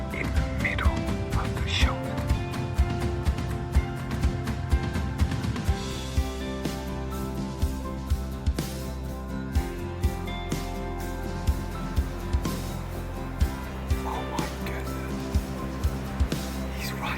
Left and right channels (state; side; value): identical; both; correlation 1.00